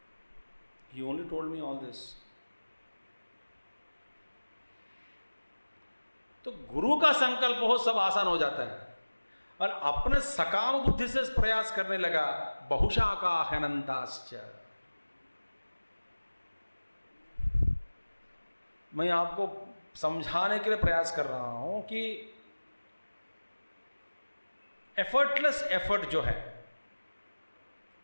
He only told me all this। तो गुरु का संकल्प हो, सब आसान हो जाता है। और अपने सकाम बुद्धि से प्रयास करने लगा, बहुशाखा अनंताश्च। मैं आपको समझाने के लिए प्रयास कर रहा हूं कि एफर्टलेस एफर्ट जो है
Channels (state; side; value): inverted; both; correlation -1.00